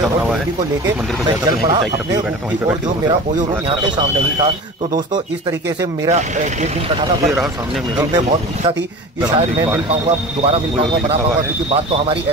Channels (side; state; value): both; normal; correlation 0.35